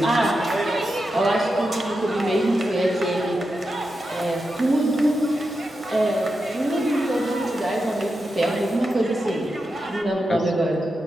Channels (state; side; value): normal; both; correlation 0.88